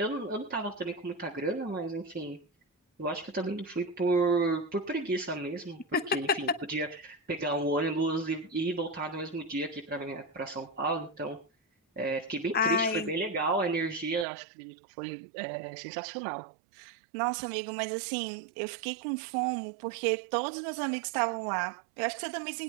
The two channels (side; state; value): left; drops out; at 14.2 s